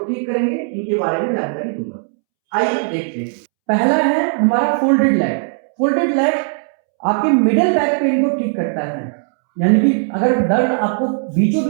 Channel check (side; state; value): left; silent; 68 dB below the other